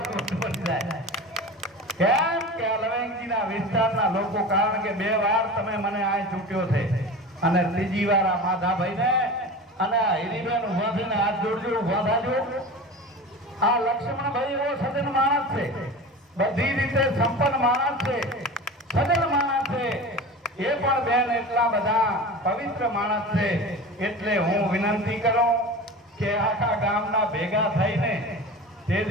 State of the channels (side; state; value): both; normal; correlation 0.32